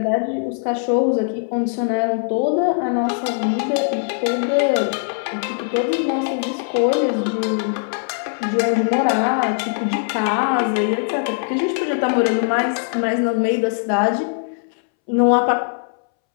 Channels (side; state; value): right; silent; 65 dB below the other